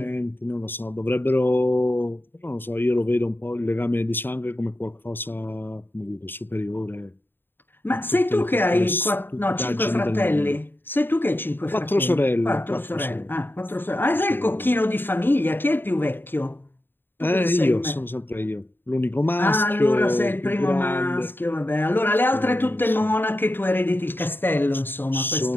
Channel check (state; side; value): late; right; 0.098 ms